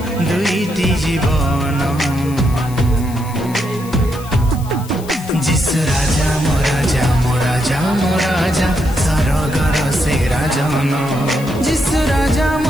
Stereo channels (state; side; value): noise; left; hiss, 19 dB below the sound